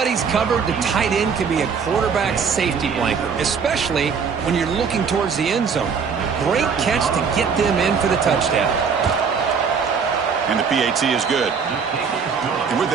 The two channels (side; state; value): left; quieter; 6.0 dB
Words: covered, the tight end can be a quarterback's safety blanket, especially when you're looking towards the end zone. Great catch to get them in for the touchdown. And the PAT is good. And with